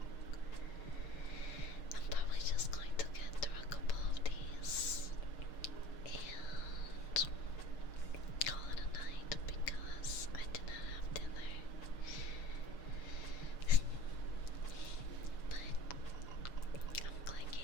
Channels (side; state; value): right; late; 6.6 ms